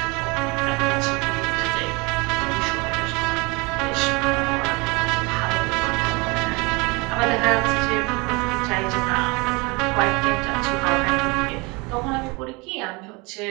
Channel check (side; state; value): left; quieter; 26.8 dB